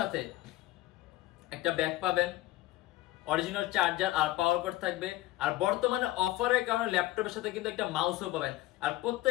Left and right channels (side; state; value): right; quieter; 16.8 dB